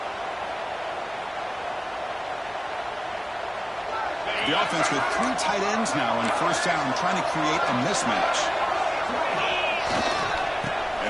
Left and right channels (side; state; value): both; identical; correlation 1.00